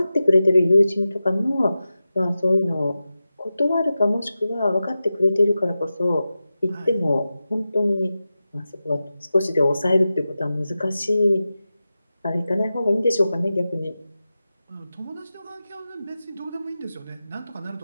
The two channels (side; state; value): both; inverted; correlation -0.93